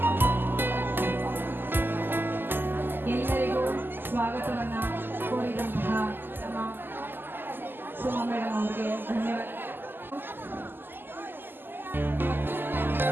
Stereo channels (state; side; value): late; left; 0.094 ms